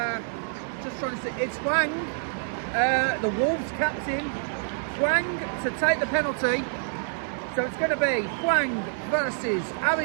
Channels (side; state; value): left; silent; 55 dB below the other